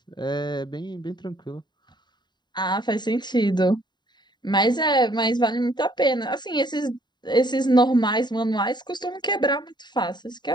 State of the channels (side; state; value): right; late; 0.21 ms